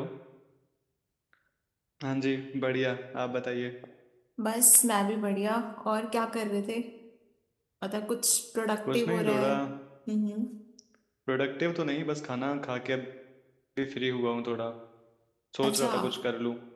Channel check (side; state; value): both; identical; correlation 1.00